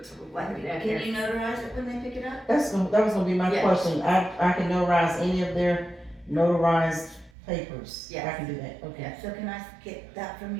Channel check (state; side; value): drops out; left; at 7.3 s